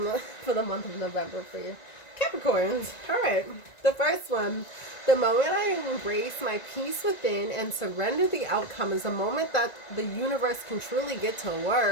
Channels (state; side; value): late; right; 1.9 ms